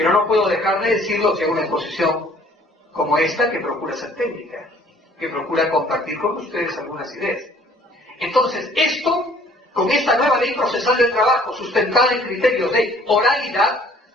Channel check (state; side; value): normal; both; correlation 0.56